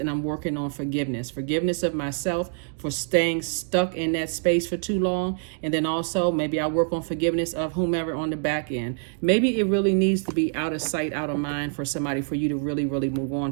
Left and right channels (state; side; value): silent; left; 61 dB below the other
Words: I'm working on forgiveness. Forgiveness of myself for staying stuck in that space for too long. And then also maybe I work on forgiveness of whomever on the back end. Maybe it really needs to be out of sight, out of mind for somebody, for you to really, really move on